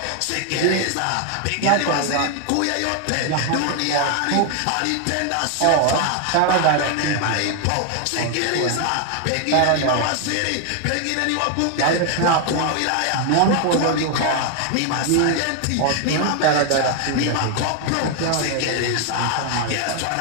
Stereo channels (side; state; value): both; different; correlation 0.00